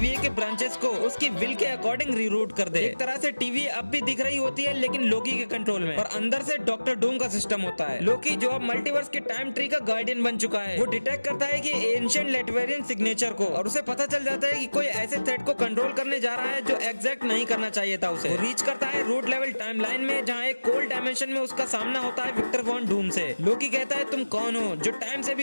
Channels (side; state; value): both; inverted; correlation -1.00